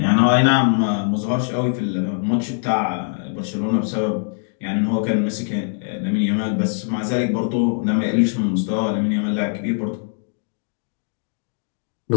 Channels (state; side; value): silent; right; digital silence